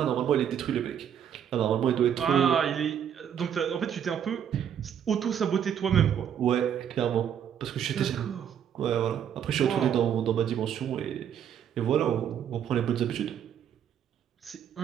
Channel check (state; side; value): quieter; left; 9.0 dB